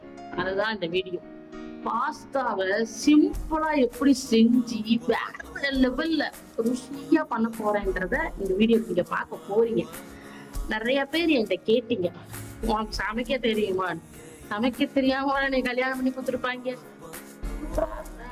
அதுதான் இந்த வீடியோ. பாஸ்தாவை சிம்பிளா எப்படி செஞ்சு வேற லெவல்ல ருசியா பண்ண போறேன்றத இந்த வீடியோ நீங்க பார்க்க போறீங்க. நிறைய பேர் என்கிட்ட கேட்டீங்க, உனக்கு சமைக்க தெரியுமா? சமைக்க தெரியாம நீ கல்யாணம் பண்ணி கொடுத்துருப்பாங்க.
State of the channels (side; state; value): both; identical; correlation 1.00